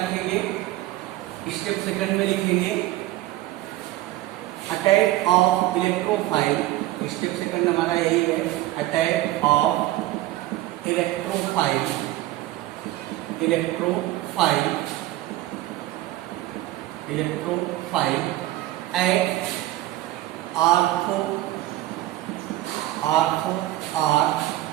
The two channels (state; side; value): quieter; left; 16.1 dB